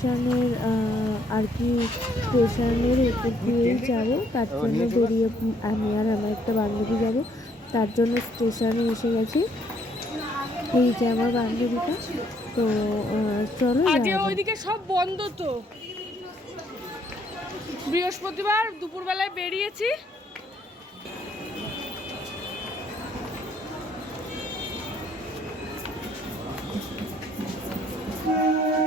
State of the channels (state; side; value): normal; both; correlation 0.67